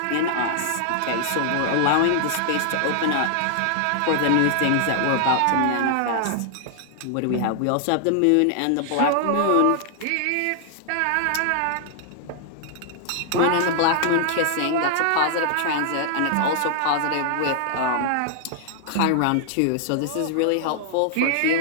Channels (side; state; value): both; different; correlation -0.01